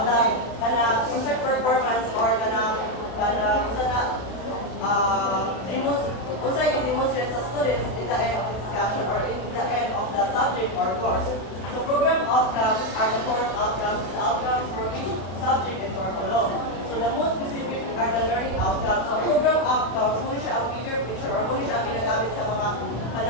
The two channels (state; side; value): late; right; 31 ms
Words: the unsay performance or unsay i-demonstrate sa students in the end of the discussion or in the end of the subject or course. So program outcomes are the course outcomes, the outcomes for each subject and curriculum. So the most specific are the learning outcomes. So program outcomes, muna siya ang bigger picture or muna siya ang ginagamit sa mga